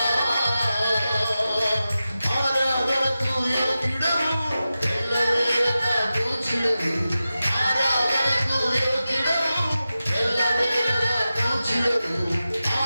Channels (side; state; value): both; inverted; correlation -0.93